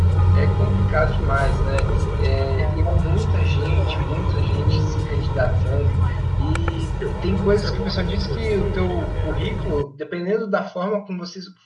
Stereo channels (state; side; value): identical; both; correlation 1.00